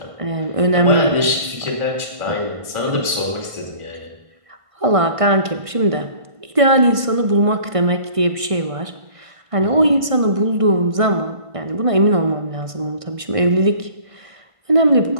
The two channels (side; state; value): left; late; 1.6 ms